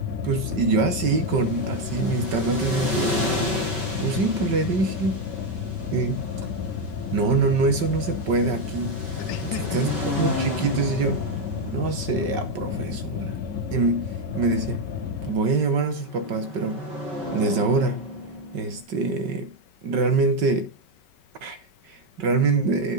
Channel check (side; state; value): left; late; 5.3 ms